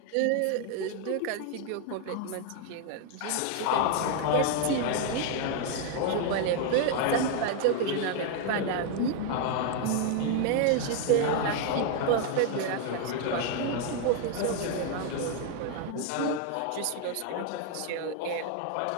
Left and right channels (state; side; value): different; both; correlation 0.00